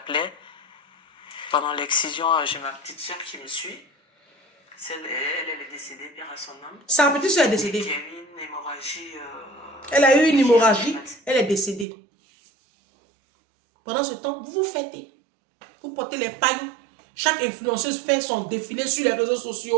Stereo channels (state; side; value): drops out; left; at 11.9 s